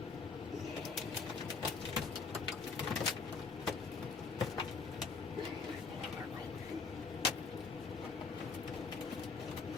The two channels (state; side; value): quieter; right; 4.7 dB